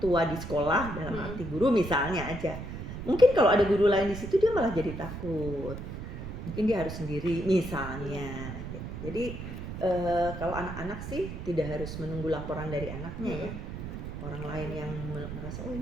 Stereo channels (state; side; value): noise; right; rumble, 8 dB below the sound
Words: tua di sekolah, dalam arti guru misalnya aja. Mungkin kalau ada guru lain di situ dia malah jadi takut. Mungkin dia harus sendiri misalnya. Jadi kalau anak-anak sih tidak harus menunggu laporan dari anaknya ya. Orang lain yang merasa